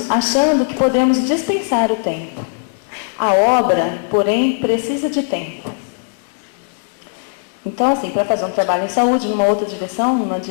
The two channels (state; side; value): silent; right; 67 dB below the other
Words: achando que podemos dispensar o tempo. A obra, porém, precisa de tempo. Então, assim, para fazer um trabalho em saúde, numa outra direção, numa